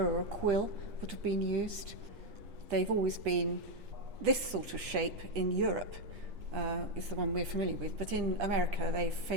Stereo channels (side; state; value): left; late; 8.4 ms